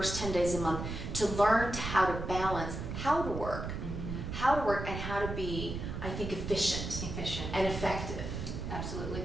10 days a month to learn how to balance how to work. How to work and how to be, I think, efficient and effective. Absolutely.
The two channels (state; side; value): noise; right; rumble, 5 dB below the sound